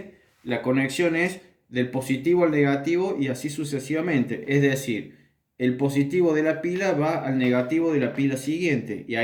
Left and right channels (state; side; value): identical; both; correlation 1.00